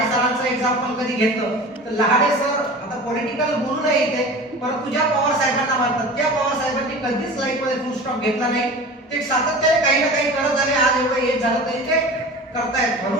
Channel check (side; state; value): both; normal; correlation 0.36